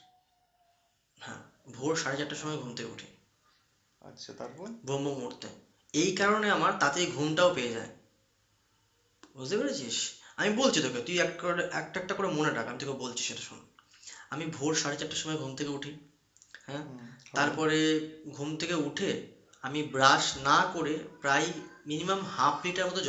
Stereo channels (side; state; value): both; identical; correlation 1.00